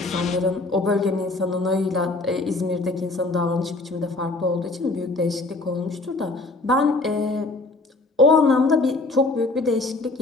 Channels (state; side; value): quieter; right; 3.2 dB